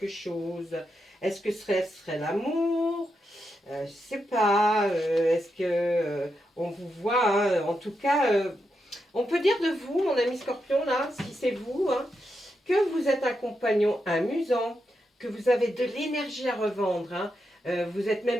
chose. Est-ce que ce serait l'amour? Je ne sais pas. Est-ce que on vous voit hein, en tout cas, on peut dire de vous, mon ami Scorpion, là, si c'est vous, hein, que vous êtes un compagnon amusant, que vous avez de l'énergie à revendre, hein, vous êtes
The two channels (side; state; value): both; normal; correlation 0.85